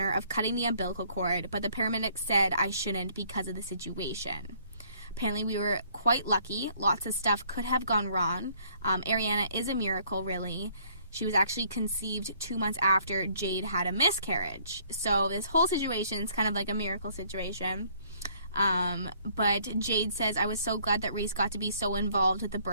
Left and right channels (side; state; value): both; inverted; correlation -0.62